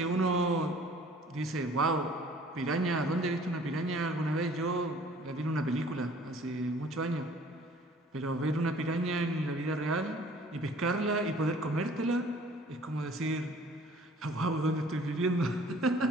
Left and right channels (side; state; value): both; normal; correlation 0.52